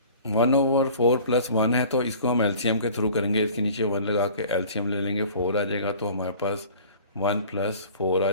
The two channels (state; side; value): inverted; both; correlation -0.46